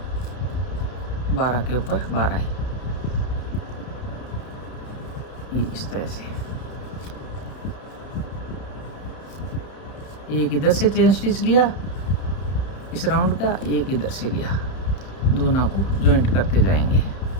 12 के ऊपर 12 है ये इस तरह से। एक इधर से चेन स्टिच लिया इस राउंड का, एक इधर से लिया, दोनों को जॉइंट करते जाएंगे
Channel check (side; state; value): right; late; 31 ms